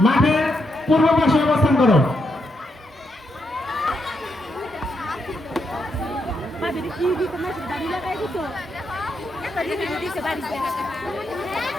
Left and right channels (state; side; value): normal; both; correlation 0.81